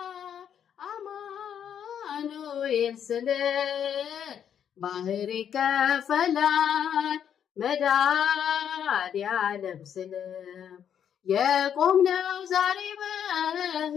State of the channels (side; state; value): right; quieter; 8.8 dB